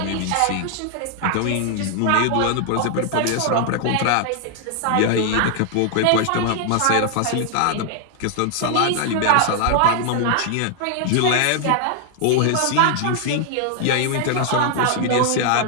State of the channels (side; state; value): both; different; correlation 0.00